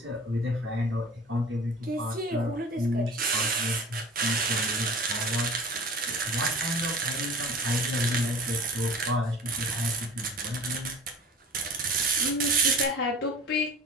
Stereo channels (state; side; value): normal; both; correlation 0.40